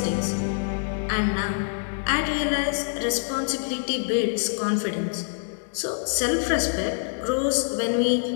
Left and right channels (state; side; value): silent; right; digital silence